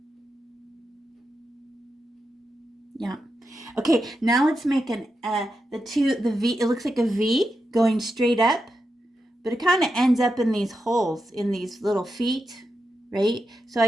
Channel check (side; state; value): both; normal; correlation 0.87